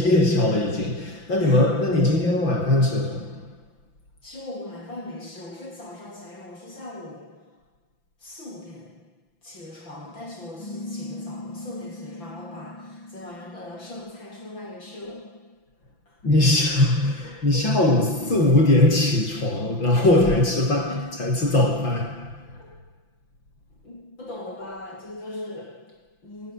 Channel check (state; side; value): late; right; 5.9 ms